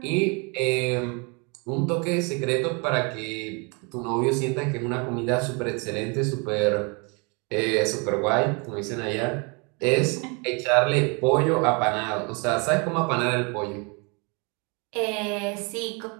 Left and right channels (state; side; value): quieter; left; 31.9 dB